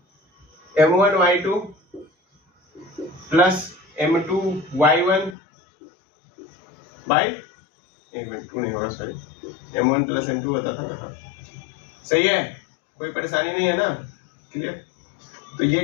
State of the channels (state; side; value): drops out; right; at 5.4 s